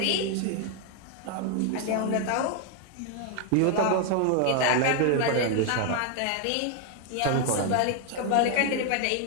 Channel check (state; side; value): different; both; correlation 0.00